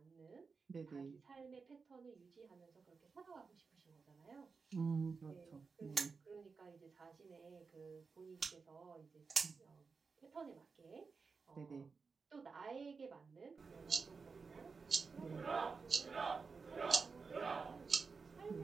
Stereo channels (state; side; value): quieter; left; 4.9 dB